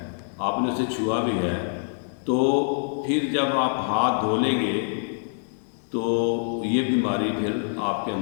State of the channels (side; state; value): right; silent; digital silence